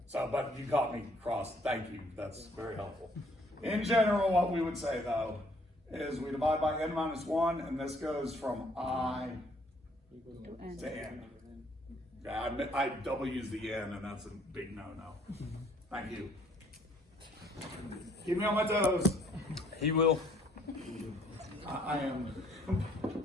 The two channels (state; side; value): normal; both; correlation 0.63